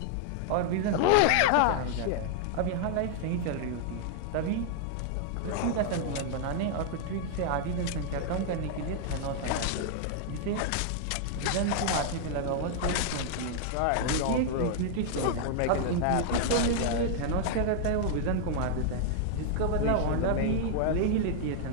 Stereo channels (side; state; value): both; different; correlation 0.00